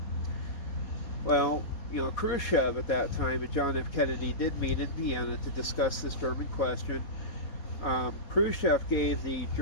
Well, Khrushchev at that time and John F. Kennedy did meet in Vienna to discuss this German question. Khrushchev gave the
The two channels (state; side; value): late; right; 4.0 ms